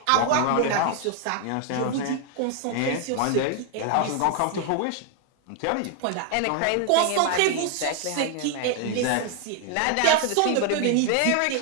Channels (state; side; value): different; both; correlation 0.00